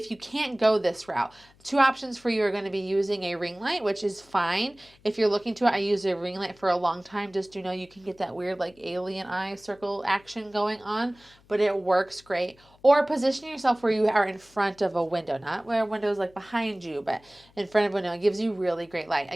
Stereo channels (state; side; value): noise; left; hum, 29 dB below the sound